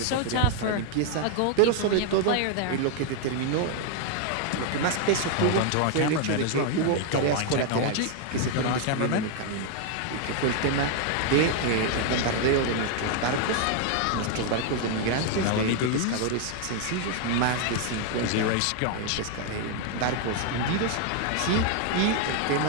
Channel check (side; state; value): both; different; correlation 0.01